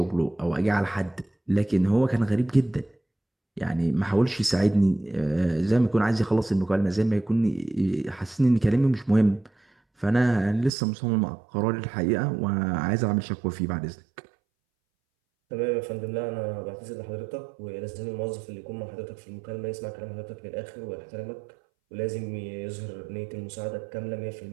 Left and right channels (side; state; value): left; drops out; at 10.7 s